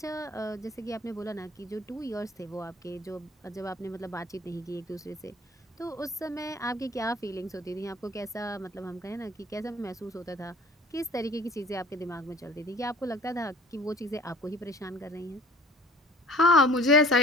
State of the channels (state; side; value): normal; both; correlation 0.50